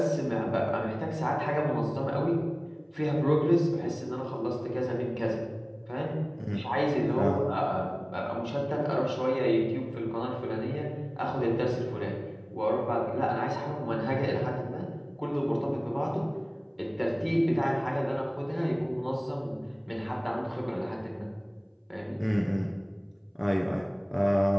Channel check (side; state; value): both; identical; correlation 1.00